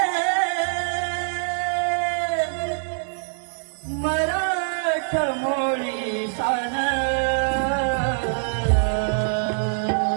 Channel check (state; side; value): silent; left; digital silence